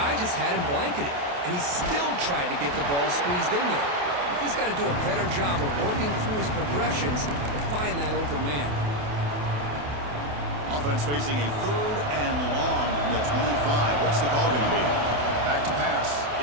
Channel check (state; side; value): late; left; 28 ms